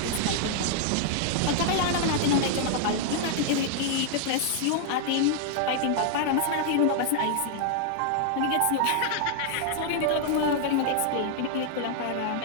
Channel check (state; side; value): different; both; correlation -0.01